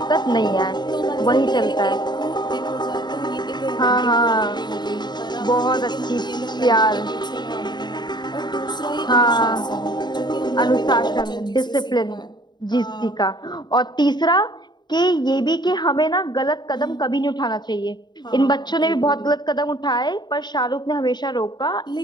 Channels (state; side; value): late; right; 0.21 ms